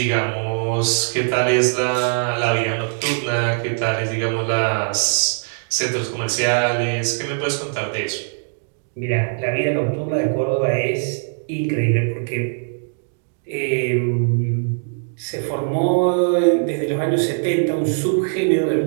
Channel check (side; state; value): left; silent; digital silence